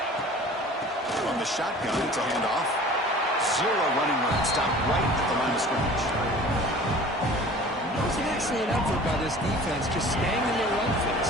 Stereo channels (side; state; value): both; normal; correlation 0.44